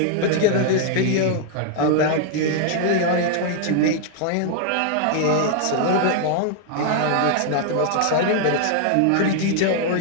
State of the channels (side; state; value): both; different; correlation 0.00